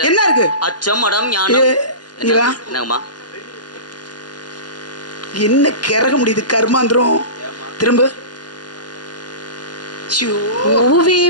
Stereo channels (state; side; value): late; right; 0.70 ms